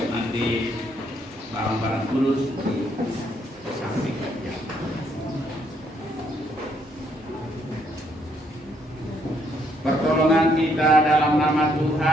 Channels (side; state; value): both; normal; correlation 0.71